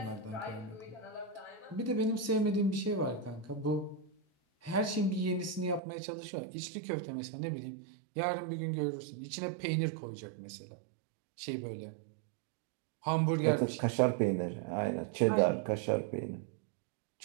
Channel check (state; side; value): drops out; left; at 5.8 s